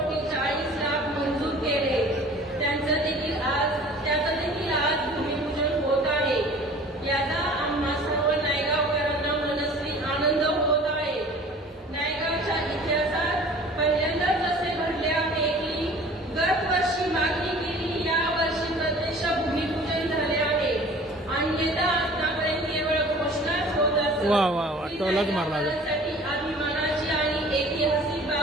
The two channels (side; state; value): both; normal; correlation 0.46